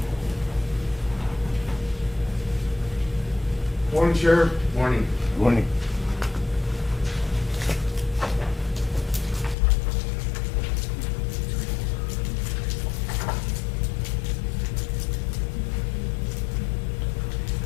Morning, Sheriff. Morning. Morning.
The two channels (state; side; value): drops out; right; at 9.6 s